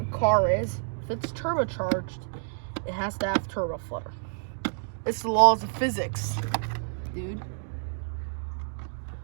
car is, if it's turbocharged, it has to have turbo flutter. It's the laws of physics, dude.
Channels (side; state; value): left; silent; digital silence